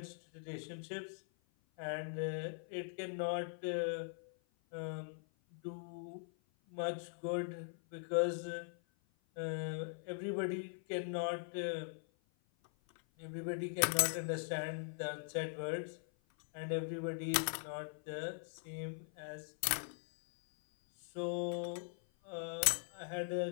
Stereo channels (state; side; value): silent; right; 50 dB below the other